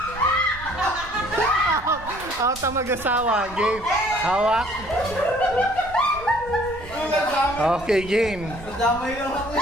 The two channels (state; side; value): noise; right; rumble, 16 dB below the sound